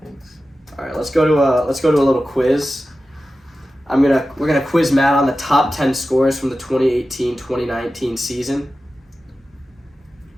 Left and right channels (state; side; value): normal; both; correlation 0.94